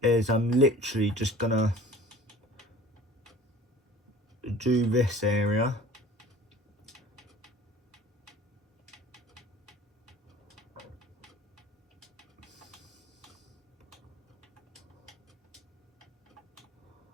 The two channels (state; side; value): normal; both; correlation 0.44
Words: is I'm literally just gonna do this area.